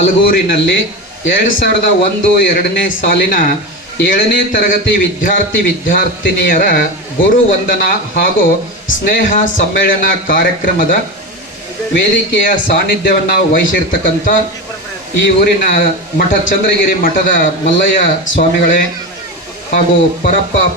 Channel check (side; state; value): both; normal; correlation 0.21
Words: 2001-2ನೇ ಸಾಲಿನ 7ನೇ ತರಗತಿ ವಿದ್ಯಾರ್ಥಿನಿಯರ ಗುರು ವಂದನಾ ಹಾಗೂ ಸ್ನೇಹ ಸಮ್ಮೇಳನ ಕಾರ್ಯಕ್ರಮದ ವೇದಿಕೆಯ ಸಾನ್ನಿಧ್ಯವನ್ನು ವಹಿಸಿರ್ತಕ್ಕಂಥ ಈ ಊರಿನ ಚಂದ್ರಗಿರಿ ಮಠದ ಮಲ್ಲಯ್ಯ ಸ್ವಾಮಿಗಳೇ ಹಾಗೂ ಪರಪ್ಪ